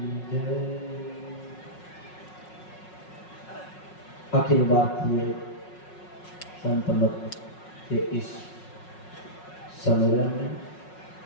जय। अखिल भारतीय संत मत के इस सम्मेलन में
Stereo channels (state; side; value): late; right; 5.5 ms